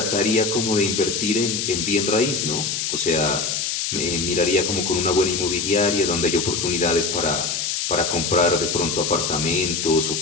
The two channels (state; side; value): noise; left; hiss, 1 dB below the sound